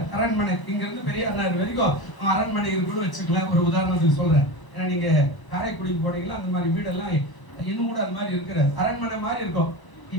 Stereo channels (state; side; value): late; right; 1.0 ms